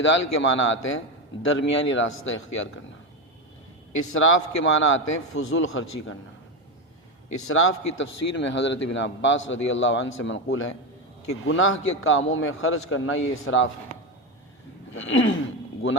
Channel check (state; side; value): normal; both; correlation 0.13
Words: کے معنی آتے ہیں درمیانی راستہ اختیار کرنا. اسراف کے معنی آتے ہیں فضول خرچی کرنا. اسراف کی تفسیر میں حضرت ابن عباس رضی اللہ عنہ سے منقول ہے کہ گناہ کے کاموں میں خرچ کرنا یہ اسراف ہے.